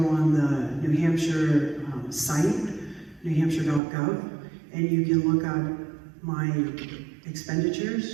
the New Hampshire site, newhampshire.gov, and you can look up my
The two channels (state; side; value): drops out; left; at 3.8 s